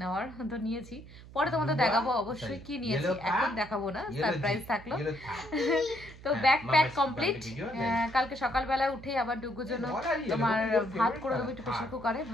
তো নিয়েছি। পরে তোমাদের দেখাবো অবশ্যই কি নিয়েছি, এখন দেখাবো না, সারপ্রাইজ থাকলো। তো ব্যাগ প্যাক কমপ্লিট। কালকে সকালবেলায় উঠেই আবার ডুগুর জন্য তোমার ভাত করে দেবো, একটু প্রেশার কুকারে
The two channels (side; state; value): right; noise; hum, 18 dB below the sound